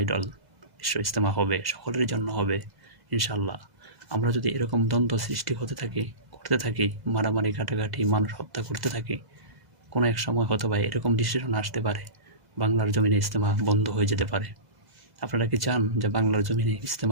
বিশ্ব ইজতেমা হবে, সকলের জন্য হবে ইনশাআল্লাহ। আমরা যদি এরকম দ্বন্দ্ব সৃষ্টি করতে থাকি, মারামারি ঘাটাঘাটি, মানুষ হত্যা করতে থাকি, কোনো এক সময় হয়তো বা এরকম ডিসিশন আসতে পারে, বাংলার জমিনে ইজতেমা বন্ধ হয়ে যেতে পারে। আপনারা কি চান যে বাংলার জমিনে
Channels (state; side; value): late; left; 2.0 ms